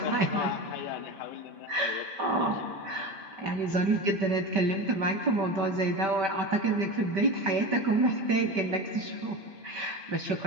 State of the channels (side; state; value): left; late; 5.2 ms